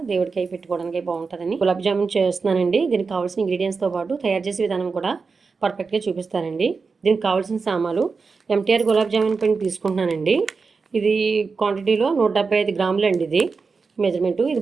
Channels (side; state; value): left; quieter; 4.7 dB